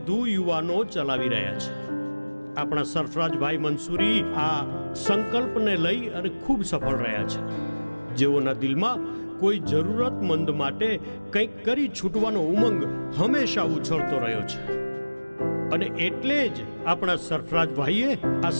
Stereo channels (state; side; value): inverted; both; correlation -1.00